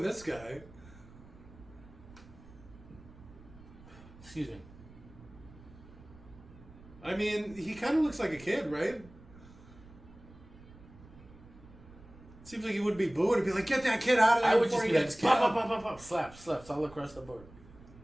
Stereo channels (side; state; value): right; noise; rumble, 20 dB below the sound